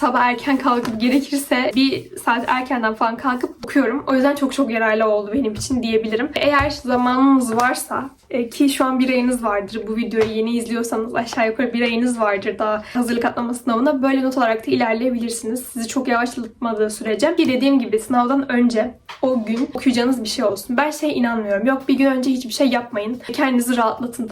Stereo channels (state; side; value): identical; both; correlation 1.00